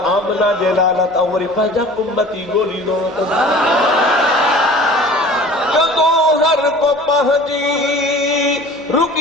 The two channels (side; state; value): right; noise; hum, 28 dB below the sound